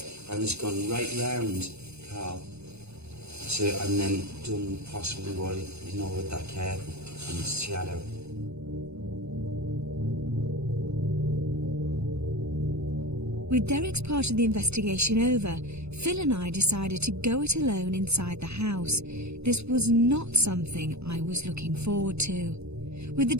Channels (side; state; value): left; late; 0.80 ms